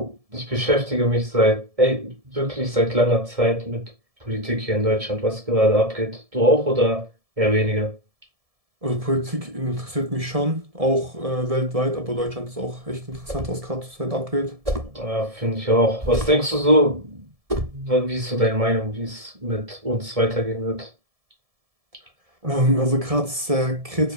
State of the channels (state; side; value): late; left; 1.7 ms